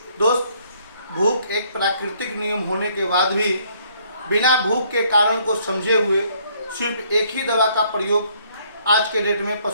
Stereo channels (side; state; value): both; inverted; correlation -0.65